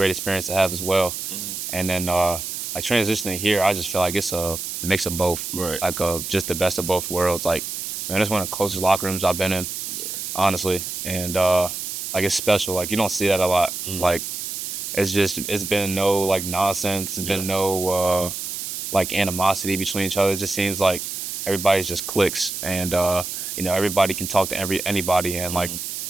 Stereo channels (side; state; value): right; noise; hiss, 5 dB below the sound